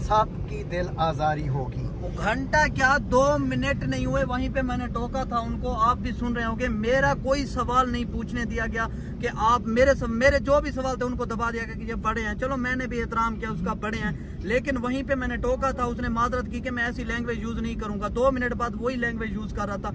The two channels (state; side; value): identical; both; correlation 1.00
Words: दिल आजारी होगी। घंटा क्या 2 मिनट नहीं हुए, वहीं पे मैंने टोका था उनको। आप भी सुन रहे होंगे, मेरा कोई सवाल नहीं पूछने दिया गया कि आप मेरे जो भी सवाल थे उनको दबा दिया गया कि ये बड़े हैं। चलो मैंने भी एहतराम किया उसका, बड़े हैं, लेकिन वहीं पे मैंने टोका था, उसने माजरत की कि मैं ऐसी लैंग्वेज यूज नहीं करूंगा। 2 मिनट बाद वही लैंग्वेज यूज कर रहा था,